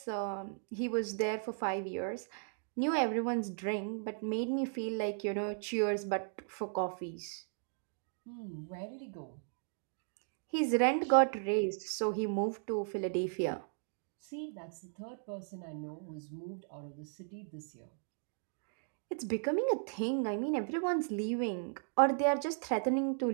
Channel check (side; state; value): left; silent; digital silence